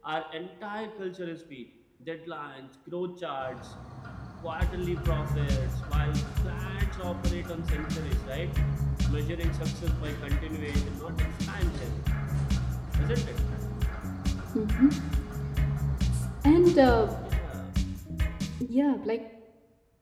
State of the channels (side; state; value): both; identical; correlation 1.00